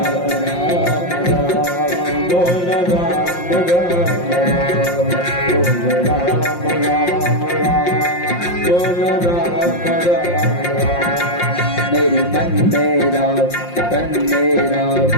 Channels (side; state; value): right; late; 5.7 ms